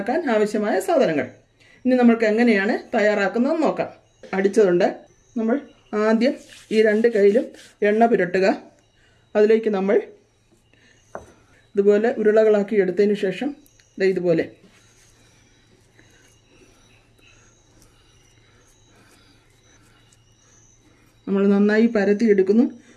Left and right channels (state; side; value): identical; both; correlation 1.00